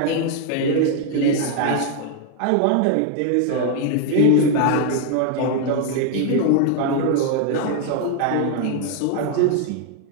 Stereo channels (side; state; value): both; different; correlation 0.00